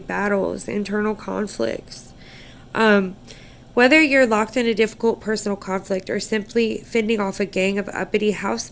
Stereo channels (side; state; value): both; identical; correlation 1.00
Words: internal conflicts. Um, Whether you're locked in a difficult personal conflict or simply fending off a gang of uppity house